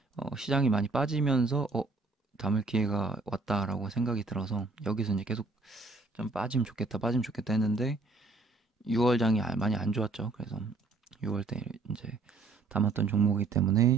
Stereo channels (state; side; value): quieter; left; 3.6 dB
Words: 시장이 많이 빠지면서 담을 기회가 왔다라고 생각이 들어서 여기서 이제 계속 좀 빠지면 좋겠다 했는데 6월장이 많이 안 좋았죠. 그래서 6월 때 이제 담았던 종목이기